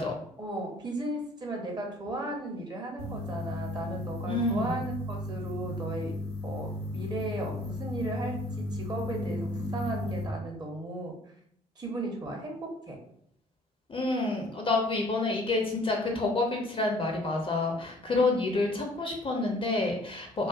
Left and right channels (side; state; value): both; normal; correlation 0.56